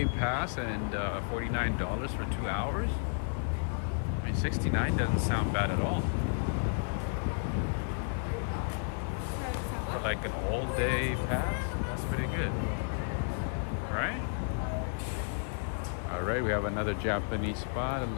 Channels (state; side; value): silent; right; 56 dB below the other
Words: pass and $49 for 2 hours. I mean, $69 doesn't sound bad at all. For like an all-day pass, that's pretty good, right? All right, we have another Japanese spot. It